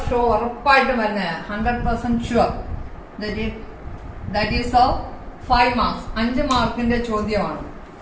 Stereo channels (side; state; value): both; identical; correlation 1.00